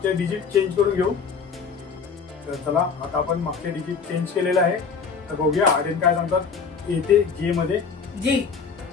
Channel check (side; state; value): right; quieter; 5.6 dB